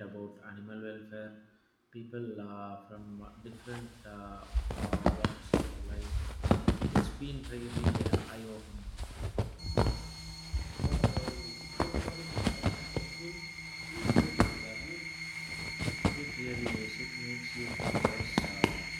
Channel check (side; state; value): both; identical; correlation 1.00